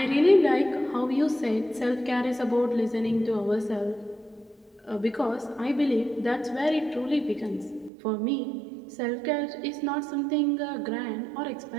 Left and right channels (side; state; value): left; drops out; at 7.9 s